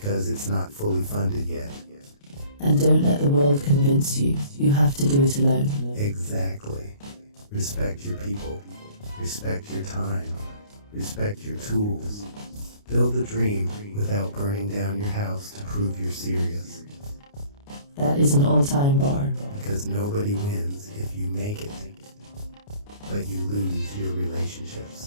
it's not fully funded yet. And don't let the world convince you you have to do it alone. Exactly. Respect your people. Respect your time. Respect your tools. Build a dream without burning down your house to prove you're serious. That is an all-time bar. Because nobody wins if you make it, but you lose your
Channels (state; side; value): late; right; 29 ms